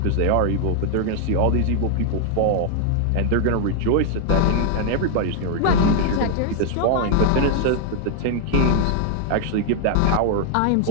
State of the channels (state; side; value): different; both; correlation 0.00